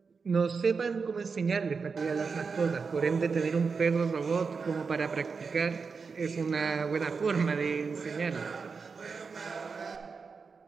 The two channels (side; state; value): left; quieter; 5.1 dB